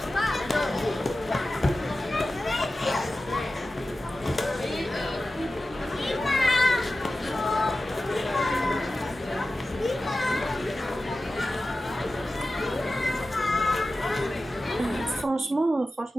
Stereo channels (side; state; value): both; normal; correlation 0.94